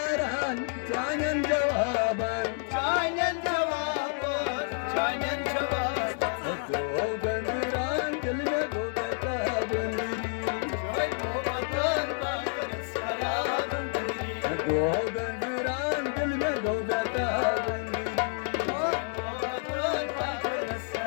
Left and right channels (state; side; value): silent; right; 58 dB below the other